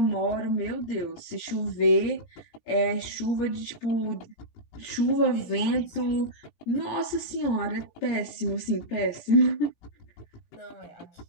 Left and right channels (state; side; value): late; right; 17 ms